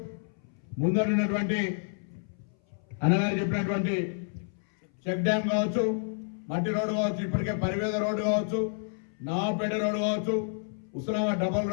ముందరున్నటువంటి అన్నగారు చెప్పినటువంటి చెక్ డ్యామ్ కావచ్చు, మట్టి రోడ్డు కావచ్చు, ఇప్పటికే పరివేద రోడ్డు కావచ్చు, నవాపేట రోడ్డు కావచ్చు, ఉస్మానాబాద్ డబల్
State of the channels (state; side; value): silent; right; 58 dB below the other